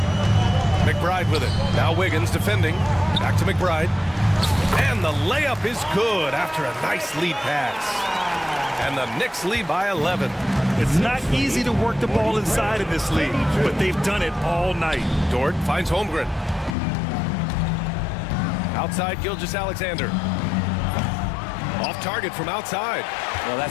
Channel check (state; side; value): drops out; right; at 16.8 s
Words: McBride with it. Now Wiggins defending. Back to McBride. And the layup is good after a nice lead pass. And the Knicks lead by 11. It's not easy to work the ball inside in this league, but they've done it all night. Dort finds Holmgren. Outside Gilgeous-Alexander. Off target from outside. Well,